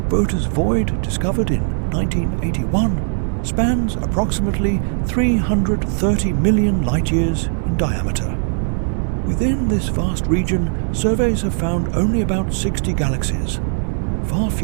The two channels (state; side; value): silent; left; digital silence